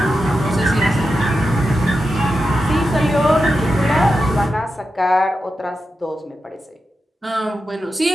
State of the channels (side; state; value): both; normal; correlation 0.89